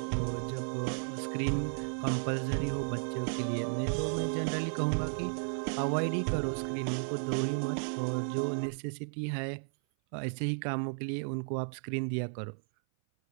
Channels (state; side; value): silent; left; 55 dB below the other